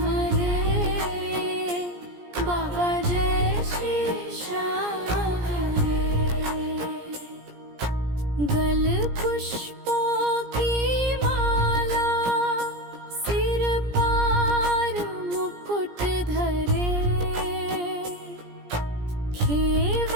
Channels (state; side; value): late; left; 17 ms